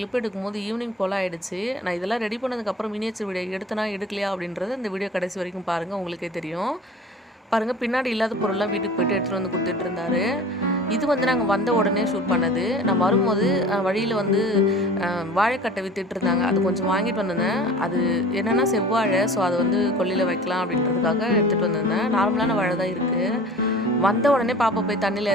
எடுக்கும்போது ஈவினிங் போல ஆயிடுச்சு. நான் இதெல்லாம் ரெடி பண்ணதுக்கு அப்புறம் மினியேச்சர் வீடியோ எடுத்தனா எடுக்கலையா அப்படின்றது இந்த வீடியோ கடைசி வரைக்கும் பாருங்க உங்களுக்கே தெரியும். பாருங்க பின்னாடி இல்லாத பொருள்லாம் வீட்டுக்கு போயிட்டு எடுத்துட்டு வந்து கொடுத்துட்டு இருந்தாரு. இது வந்து நாங்கள் வந்த உடனே ஷூட் பண்ணது. நான் வரும்போது வழியில் வந்து வாழைக்கட்டை வித்துட்டு இருந்தாங்க. அது கொஞ்சம் வாங்கிட்டு வந்திருந்தேன். அது என்னென்னா செவ்வாழை, ஸோ அதை வந்து கொல்லையில் வைக்கலாம் அப்படின்றதுக்காக எடுத்துகிட்டு வந்திருந்தேன். நார்மலான வாழை தான் இருக்குது. வந்த உடனே பாப்பா போய் தண்ணியில்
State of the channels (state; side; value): normal; both; correlation 0.42